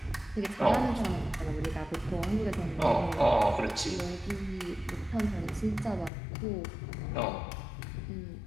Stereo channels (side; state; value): right; drops out; at 6.1 s